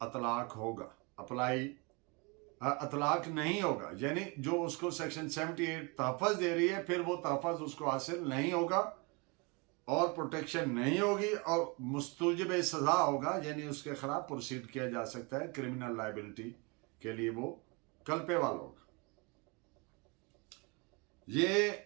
अतलाक होगा, अतलाक नहीं होगा। यानी जो उसको सेक्शन 78 तहफ़्फ़ुज़ दे रही है, फिर वो तहफ़्फ़ुज़ उसको हासिल नहीं होगा और प्रोटेक्शन नहीं होगी और मुस्तूजिब सज़ा होगा, यानी उसके खिलाफ प्रोसीड किया जा सकता है, क्रिमिनल लायबिलिटी के लिए वो कल्पेबल होगा। ये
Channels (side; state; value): left; quieter; 29.1 dB